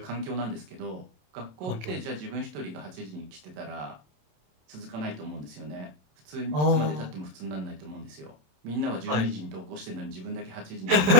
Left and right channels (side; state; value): left; late; 27 ms